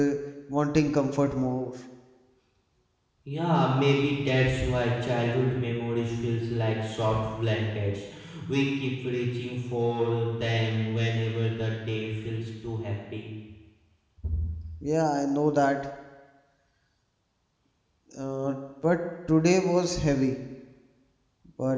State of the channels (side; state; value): both; identical; correlation 1.00